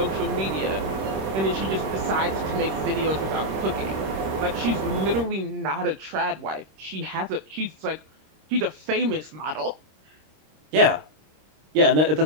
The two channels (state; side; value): late; left; 26 ms